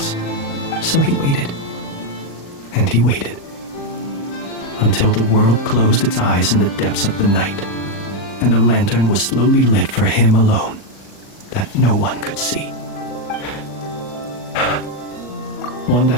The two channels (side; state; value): right; late; 40 ms